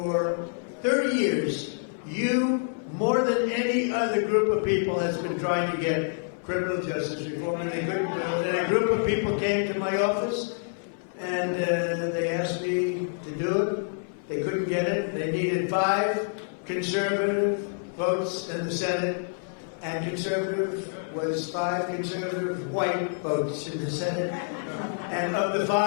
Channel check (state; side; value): silent; right; 60 dB below the other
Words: 30 years, you, more than any other group of people, has been trying to get criminal justice reform, and they couldn't do it. And a group of people came to my office, and they asked me to do it. They couldn't get it. They needed 5 conservative, votes in the Senate, and conservative was 5 conservative white votes in the Senate. And of the